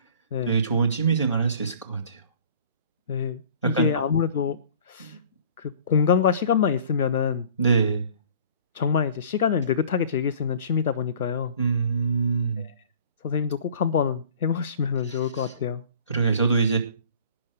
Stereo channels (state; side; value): inverted; both; correlation -0.49